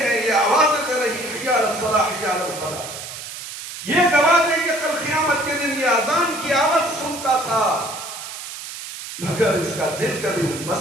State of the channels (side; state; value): right; noise; hiss, 10 dB below the sound